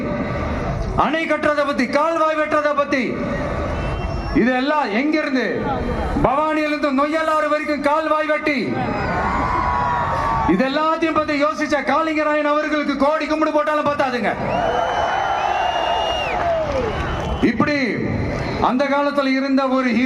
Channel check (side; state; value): both; identical; correlation 1.00